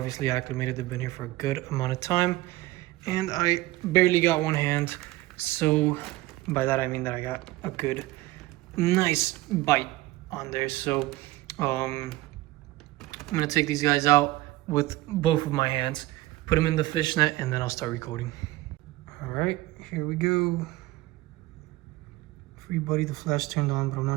acclimated. They've been here for a good amount of time, and I barely got one hand. So by that I mean that I got a good, nice bite on there. So I'm gonna take these guys out with both of my hands, put them in the fish net, and then I'll start recording. All right, here we go. Free buddy, the flash turned on, but I'm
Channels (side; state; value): left; quieter; 18.3 dB